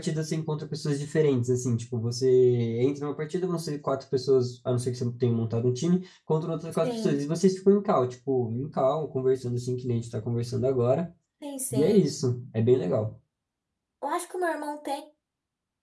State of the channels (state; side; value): identical; both; correlation 1.00